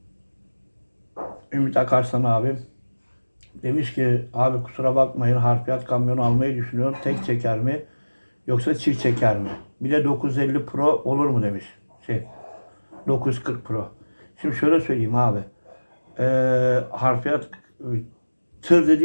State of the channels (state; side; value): inverted; both; correlation -1.00